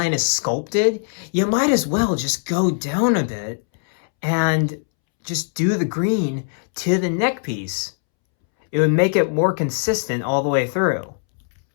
is sculpted, you might as well just go down a bit and just do the green to the neck piece. It would make it more consistent all the way through.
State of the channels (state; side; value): silent; right; 65 dB below the other